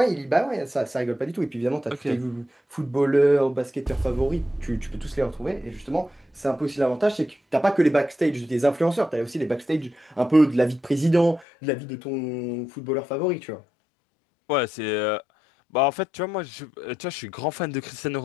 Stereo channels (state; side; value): drops out; right; at 11.5 s